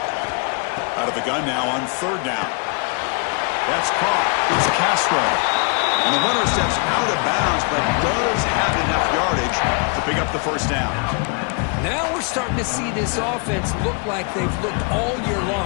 Out of the gun now on third down. That's caught. It's Castro. And the runner steps out of bounds, but does have enough yardage to pick up the first down. Now we're starting to see this offense look like they've looked all year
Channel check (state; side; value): quieter; right; 36.1 dB